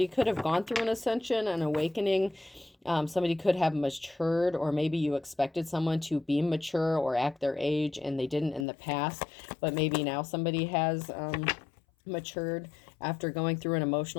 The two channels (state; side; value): drops out; right; at 8.7 s